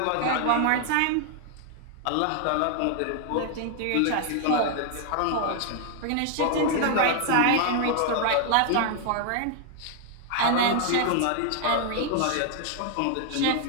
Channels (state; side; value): different; both; correlation 0.00